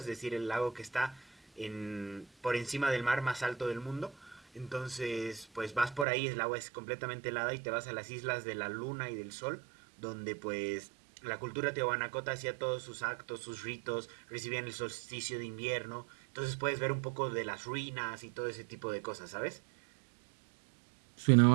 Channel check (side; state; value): left; drops out; at 6.1 s